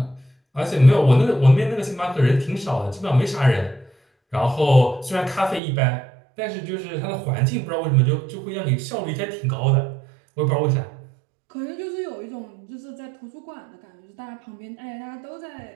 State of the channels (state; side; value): drops out; left; at 5.6 s